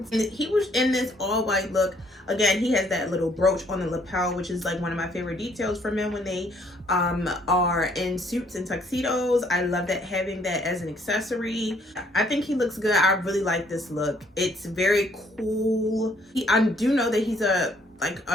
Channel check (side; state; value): both; normal; correlation 0.65